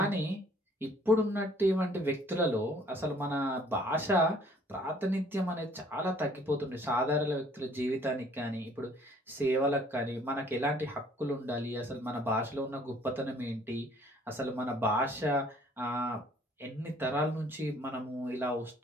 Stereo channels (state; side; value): normal; both; correlation 0.58